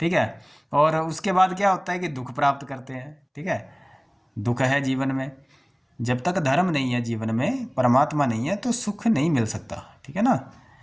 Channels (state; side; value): identical; both; correlation 1.00